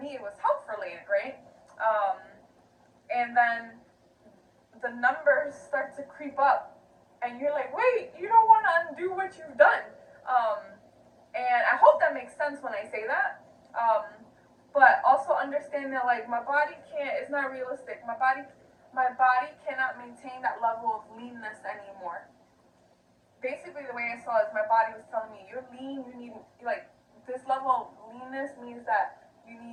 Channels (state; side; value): identical; both; correlation 1.00